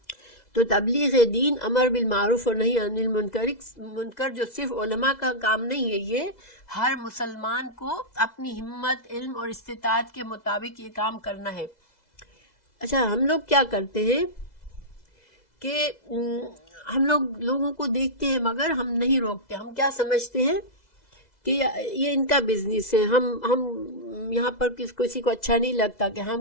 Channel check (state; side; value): late; right; 2.0 ms